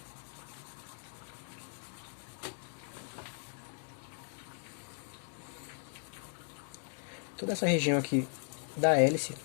Toda essa região aqui da hélice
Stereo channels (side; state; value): right; silent; 53 dB below the other